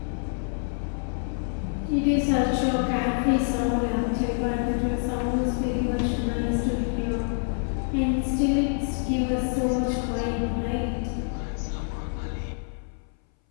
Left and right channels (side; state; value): right; silent; 60 dB below the other